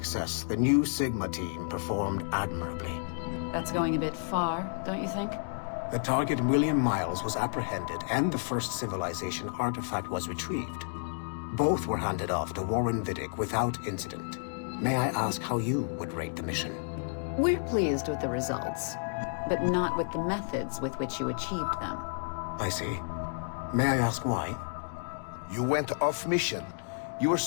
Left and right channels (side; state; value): right; silent; digital silence